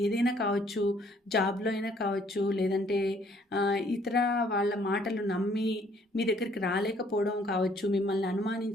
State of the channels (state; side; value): normal; both; correlation 0.63